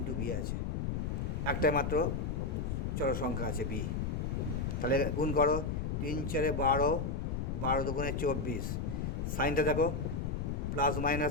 বি আছে, একটাই মাত্র চলো সংখ্যা আছে বি। তাহলে গুণ করো, 3 4 12, 12 2 24, সাইনটা দেখো প্লাস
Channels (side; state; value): left; noise; rumble, 1 dB below the sound